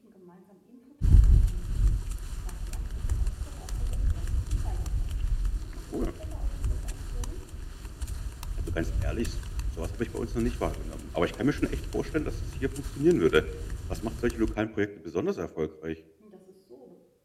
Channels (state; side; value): identical; both; correlation 1.00